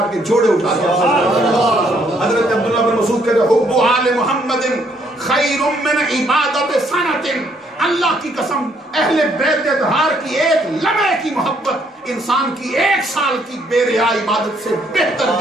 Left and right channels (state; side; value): normal; both; correlation 0.68